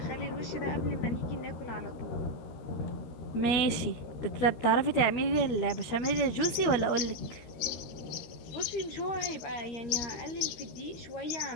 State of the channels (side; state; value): right; late; 13 ms